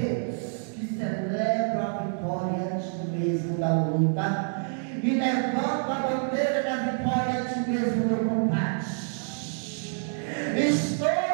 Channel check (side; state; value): left; silent; digital silence